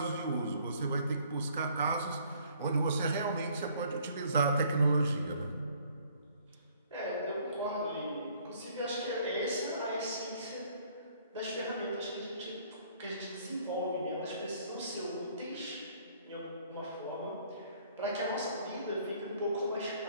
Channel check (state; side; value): inverted; both; correlation -0.60